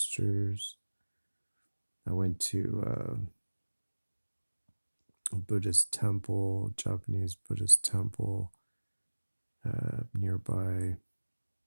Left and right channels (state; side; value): inverted; both; correlation -1.00